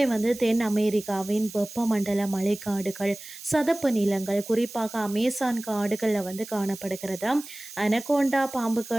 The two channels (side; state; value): right; noise; hiss, 14 dB below the sound